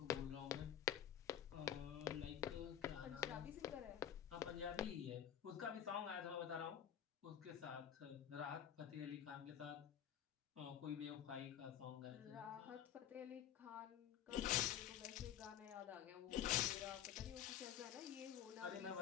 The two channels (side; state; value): right; quieter; 9.9 dB